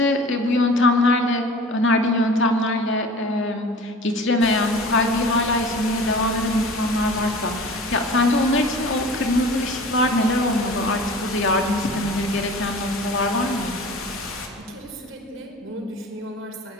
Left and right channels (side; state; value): both; normal; correlation 0.41